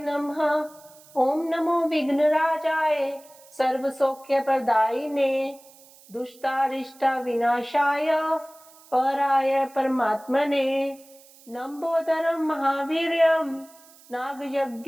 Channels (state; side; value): noise; right; hiss, 25 dB below the sound